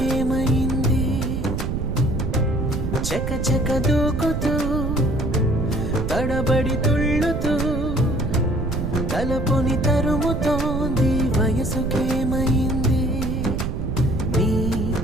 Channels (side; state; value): right; noise; rumble, 1 dB below the sound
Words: చక చక దూకుతూ తడబడి తుళ్ళుతూ తలపుని తరుముతోంది వయసుకేమైంది నీ